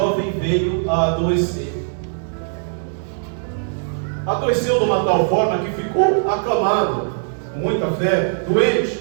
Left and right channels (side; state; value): left; silent; digital silence